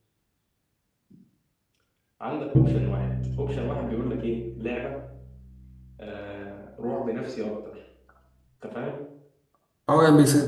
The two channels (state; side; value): identical; both; correlation 1.00